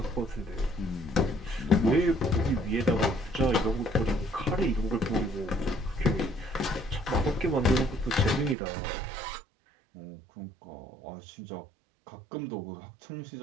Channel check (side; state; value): left; drops out; at 8.6 s